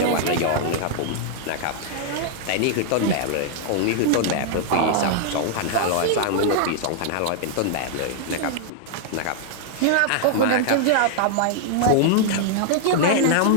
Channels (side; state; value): both; different; correlation -0.01